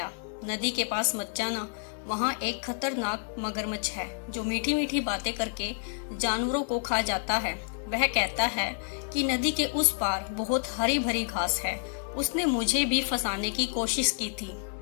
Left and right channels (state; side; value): silent; right; digital silence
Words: नदी के पास मत जाना, वहाँ एक खतरनाक मगरमच्छ है जो मीठी मीठी बातें करके जानवरों को खा जाता है। वह कहता है कि नदी के उस पार बहुत हरी भरी घास है। उसने मुझे भी फंसाने की कोशिश की थी।